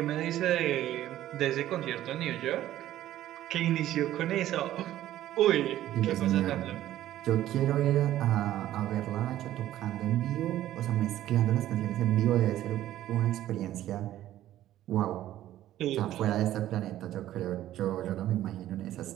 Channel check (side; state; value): left; quieter; 13.3 dB